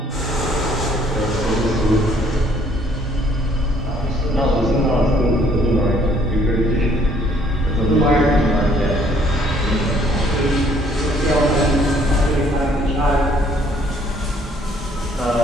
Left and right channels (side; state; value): both; normal; correlation 0.63